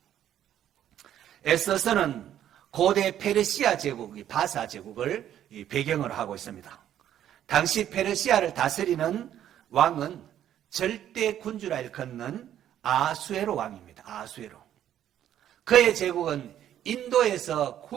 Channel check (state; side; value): quieter; left; 11.0 dB